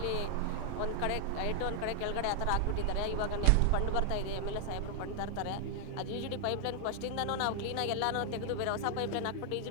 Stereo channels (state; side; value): different; both; correlation 0.00